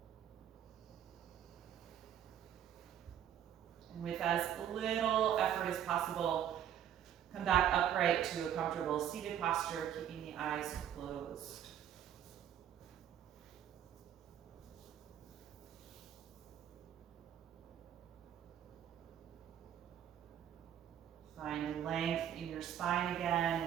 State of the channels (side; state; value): left; quieter; 10.1 dB